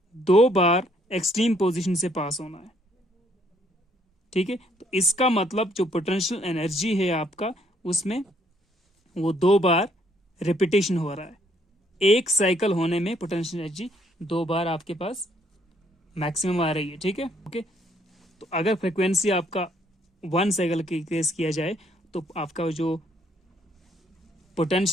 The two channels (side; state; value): both; normal; correlation 0.67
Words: 2 बार एक्सट्रीम पोजीशन से पास होना है, ठीक है। तो इसका मतलब जो पोटेंशियल एनर्जी है आपका, उसमें वो 2 बार रिपीटेशन हो रहा है। एक साइकिल होने में पोटेंशियल एनर्जी 2 बार आपके पास मैक्सिमम आ रही है, ठीक है। ओके, तो अगर फ्रिक्वेंसी आपका 1 साइकिल की केस किया जाए तो आपका जो